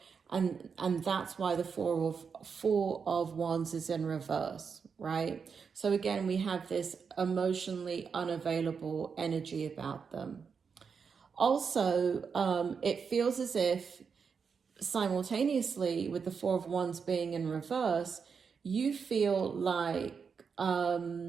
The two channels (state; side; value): quieter; left; 6.0 dB